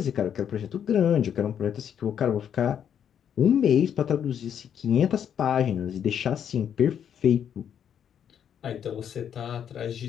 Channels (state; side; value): quieter; right; 8.8 dB